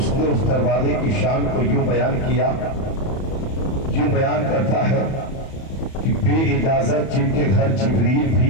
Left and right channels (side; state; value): right; late; 31 ms